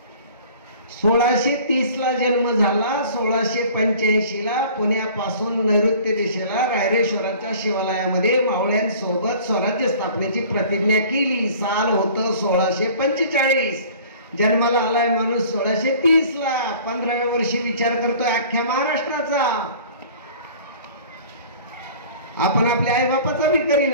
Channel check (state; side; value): inverted; both; correlation -0.47